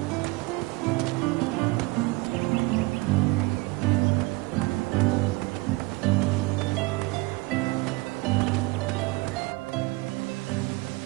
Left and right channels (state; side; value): quieter; left; 23.4 dB